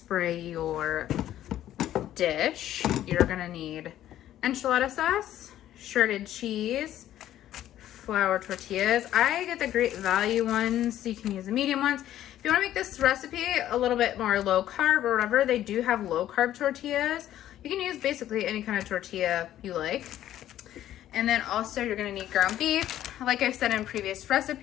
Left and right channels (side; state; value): right; quieter; 12.4 dB